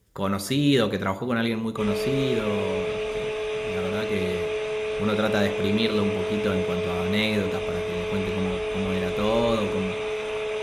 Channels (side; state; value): both; identical; correlation 1.00